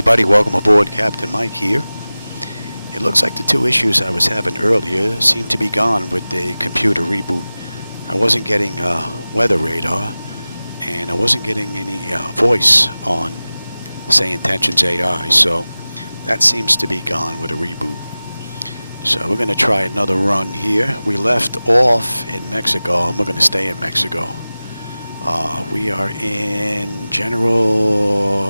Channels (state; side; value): inverted; both; correlation -0.97